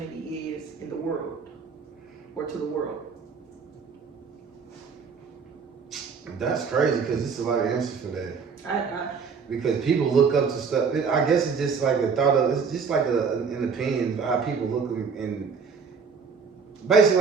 is in the world, or to the world? That's crazy because it's a lot of answers for that. I Because people look up to stuff. I guess it's just like a thought of. It's just like an opinion of how people look, and basically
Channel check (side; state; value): left; quieter; 5.7 dB